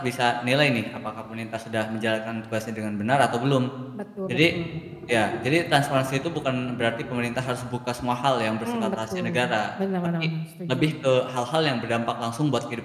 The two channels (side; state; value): both; identical; correlation 1.00